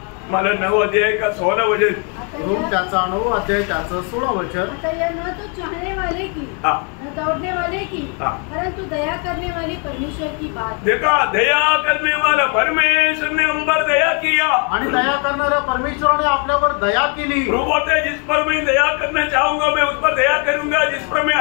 मला 9 अध्याय का 16 वचन, रोम त्याचा 9 अध्याय त्याचं 16 वचन. न तो चाहने वाले की न दौड़ने वाले की परंतु दया करने वाले परमेश्वर की बात. देखा, दया करने वाला परमेश्वर ने हम पर दया किया. आणि दया करणाऱ्या परमेश्वराने आपल्यावर दया केली. प्रभु बोलते हैं, जिस पर मैं दया करना चाहूंगा मैं उस पर दया करूंगा, जिस पर मैं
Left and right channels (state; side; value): quieter; right; 37.6 dB